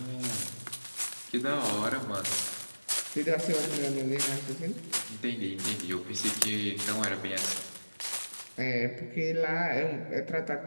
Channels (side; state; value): both; inverted; correlation -1.00